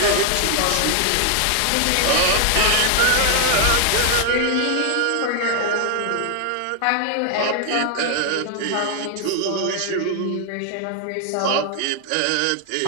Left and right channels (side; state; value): both; different; correlation 0.00